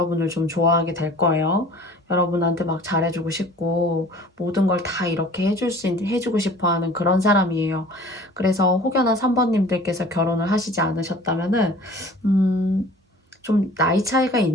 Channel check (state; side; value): normal; both; correlation 0.46